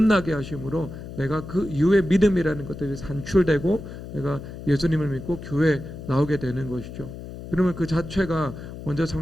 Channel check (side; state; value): left; noise; hum, 11 dB below the sound